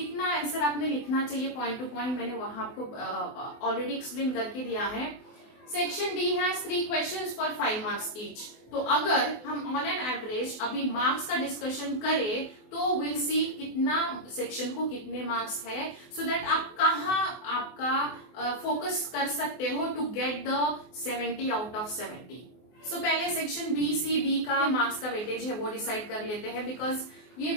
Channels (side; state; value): right; late; 24 ms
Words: आंसर आपने लिखना चाहिए पॉइंट टू पॉइंट, मैंने वहां आपको ऑलरेडी एक्सप्लेन करके दिया है। Section D has 3 questions for 5 marks each. तो अगर हम ऑन एन एवरेज अभी मार्क्स का डिस्कशन करें तो विल सी कितना सेक्शन को कितने मार्क्स है, सो दैट आप कहाँ आपका फोकस कर सकते हो to get the 70 out of 70। So पहले सेक्शन बी सी डी का मार्क्स का वेटेज है वो डिसाइड कर लेते हैं, बिकॉज ये